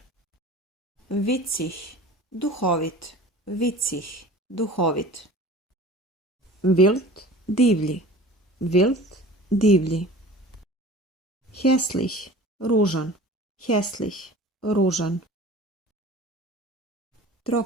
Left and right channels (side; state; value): both; normal; correlation 0.41